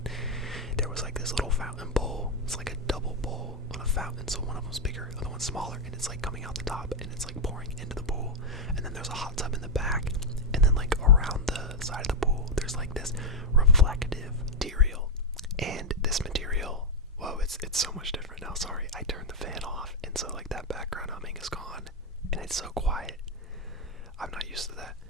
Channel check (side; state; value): both; normal; correlation 0.00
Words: There was like this little fountain bowl. It's like a double bowl on a fountain, so one of them's bigger, the other one's smaller, and it's like coming out the top, and it's like pouring into the pool. And then there's a hot tub in the back, and then like around the side of the pool, there's like this reflective material. And this material, whoa, it's so much different now. Sorry, I turned the fan off, and so like that background humming is gone, and it's so quiet. I'm not used to that.